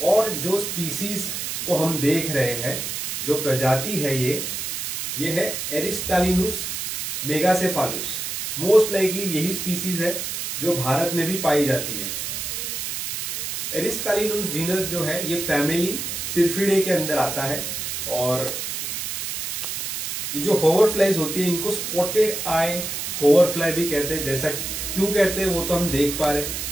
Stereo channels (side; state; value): right; noise; hiss, 4 dB below the sound